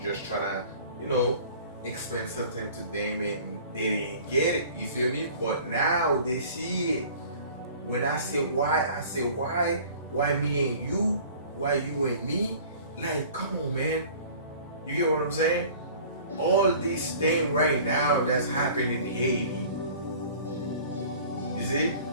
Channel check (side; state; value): both; inverted; correlation -0.46